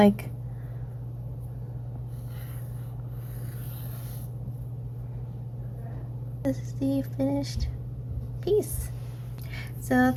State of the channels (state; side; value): identical; both; correlation 1.00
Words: This is the finished piece. So